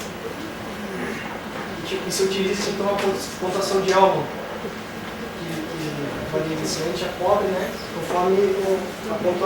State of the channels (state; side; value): identical; both; correlation 1.00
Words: E se utiliza então a pontuação de Elman, que varia inicialmente a pobre, conforme a